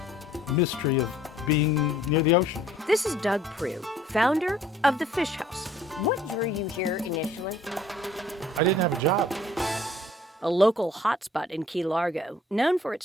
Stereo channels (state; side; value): normal; both; correlation 0.56